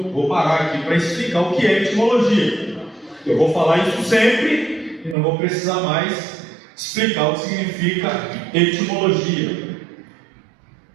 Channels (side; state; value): left; drops out; at 5.2 s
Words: vou parar aqui para explicar o que é etimologia. Eu vou falar isso sempre e não vou precisar mais explicar o que significa etimologia.